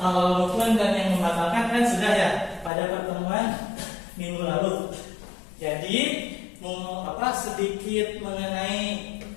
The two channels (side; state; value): right; drops out; at 2.7 s